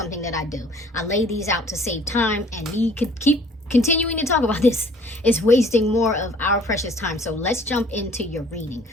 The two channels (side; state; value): both; normal; correlation 0.54